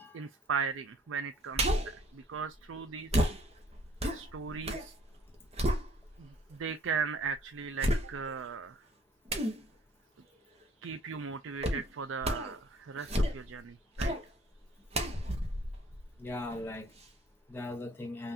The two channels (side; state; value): both; normal; correlation 0.58